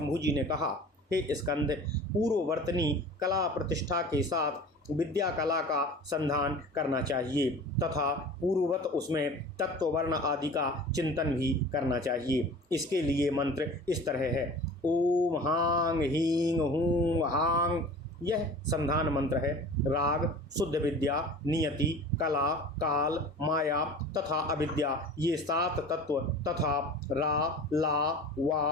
जी ने कहा, हे स्कंद, पूर्ववर्तनी कला प्रतिष्ठा के साथ विद्या कला का संधान करना चाहिए तथा पूर्ववत उसमें तत्ववर्ण आदि का चिंतन भी करना चाहिए। इसके लिए मंत्र इस तरह है। ओम हांग हींग हूं हांग, यह संधान मंत्र है। राग, शुद्ध विद्या, नियति, कला, काल, माया तथा अविद्या, ये 7 तत्व तथा रा, ला,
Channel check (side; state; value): both; normal; correlation 0.40